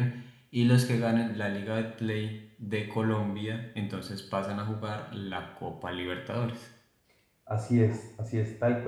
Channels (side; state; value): both; identical; correlation 1.00